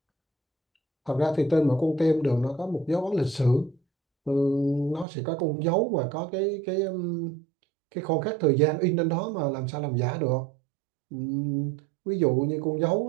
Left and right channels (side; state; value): left; drops out; at 5.1 s